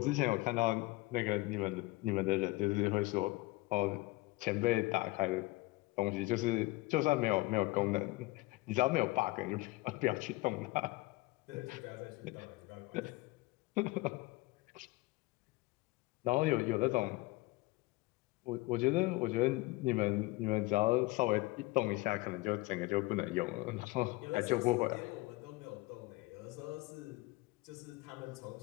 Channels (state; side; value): quieter; right; 21.5 dB